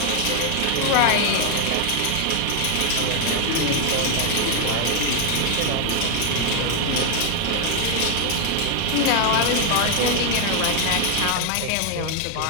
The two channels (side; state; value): both; different; correlation 0.00